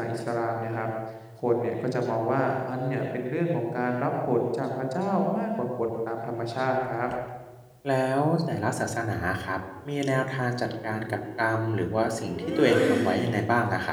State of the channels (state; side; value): identical; both; correlation 1.00